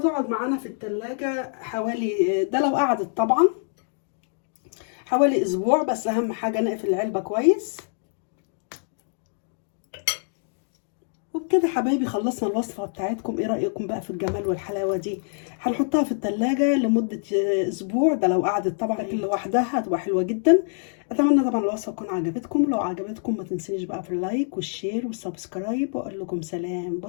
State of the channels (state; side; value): silent; right; digital silence